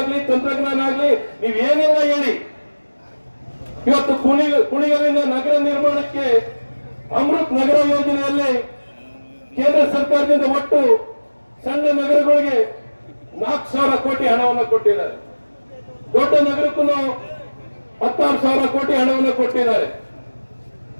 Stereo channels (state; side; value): inverted; both; correlation -1.00